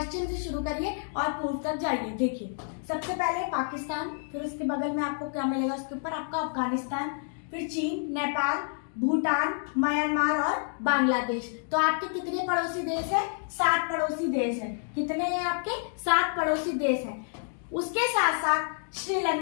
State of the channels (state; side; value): silent; right; 59 dB below the other